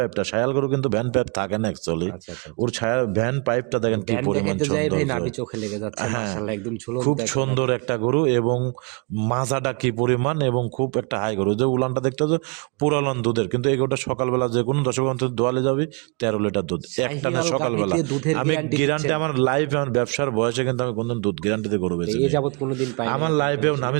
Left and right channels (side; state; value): left; quieter; 34.3 dB